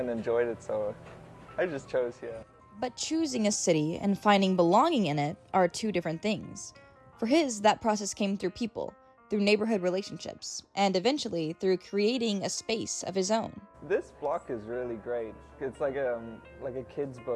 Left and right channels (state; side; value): identical; both; correlation 1.00